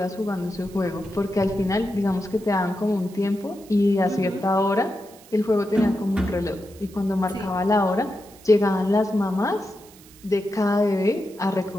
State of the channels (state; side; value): noise; right; hiss, 23 dB below the sound